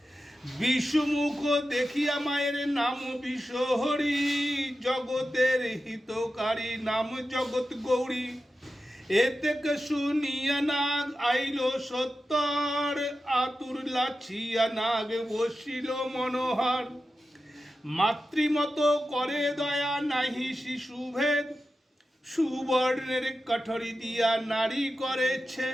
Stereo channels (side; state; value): both; normal; correlation 0.92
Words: বিশ্বমুখ দেখিয়া মায়ের নাম বিশ্বহরি, জগতের হিতকারী নাম জগৎ গৌরী। এতে শুনিয়া নাগ আইল সত্তর, আতুর লাছিয়া নাগ বসিল মনোহর। মাতৃমত করে দয়া নাহি শিশুভেদ, সুবর্ণের কাঠরি দিয়া নারী করে